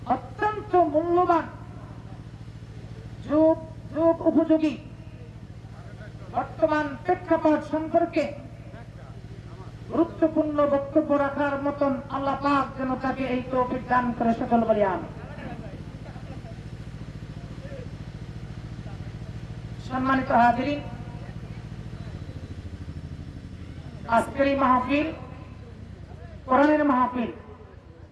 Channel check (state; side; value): identical; both; correlation 1.00